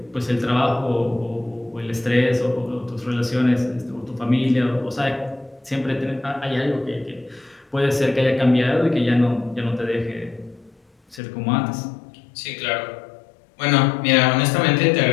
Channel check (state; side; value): drops out; right; at 11.2 s